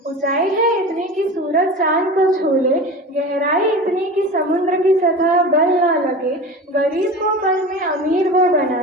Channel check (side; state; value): both; normal; correlation 0.32